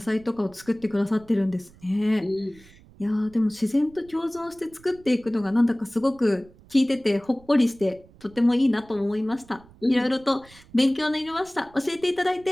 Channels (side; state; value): right; noise; rumble, 25 dB below the sound